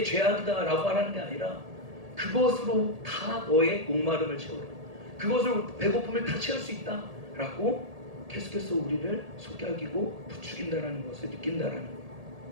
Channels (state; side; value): late; left; 1.8 ms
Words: 죄악이다 라고 하라는 게 아니라 그것으로 다 너의 목마름을 채우라 그것으로 배고픔을 다 채울 수 있다 라고 계속해서 우리를 속삭이고 부추긴다라는 것을 느낀다라는 거예요.